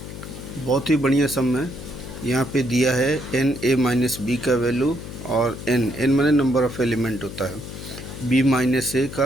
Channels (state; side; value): noise; left; hum, 11 dB below the sound